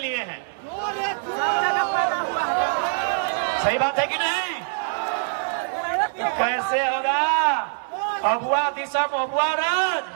हैं। सही बात है कि नहीं? कैसे होगा? अबुआ दिशा अबुआ राज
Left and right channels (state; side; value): silent; left; 63 dB below the other